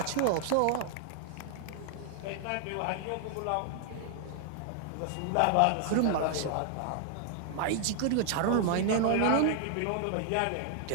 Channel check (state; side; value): different; both; correlation -0.01